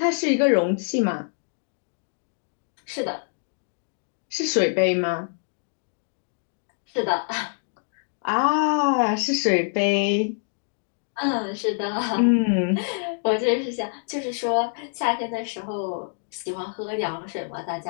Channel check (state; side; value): silent; right; digital silence